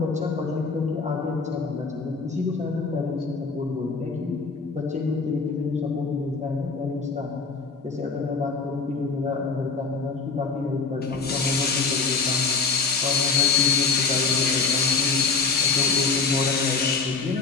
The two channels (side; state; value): right; quieter; 4.7 dB